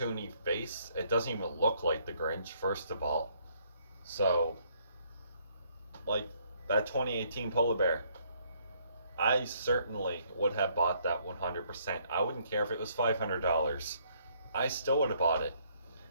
face, it doesn't even look like the Grinch, first of all. So, like, that 2018 polar bear, I certainly would have bought that 100%. I wouldn't care if it was $500. I still would have bought it,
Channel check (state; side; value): inverted; both; correlation -0.66